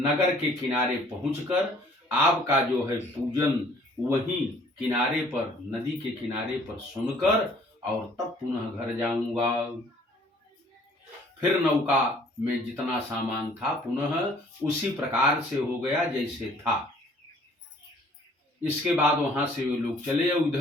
के किनारे पहुंचकर आपका जो है पूजन वहीं किनारे पर, नदी के किनारे पर सुनकर और तब पुनः घर जाऊंगा। फिर नौका में जितना सामान था पुनः उसी प्रकार से हो गया जैसे था। इसके बाद वहां से वे लोग चले।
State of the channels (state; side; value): normal; both; correlation 0.57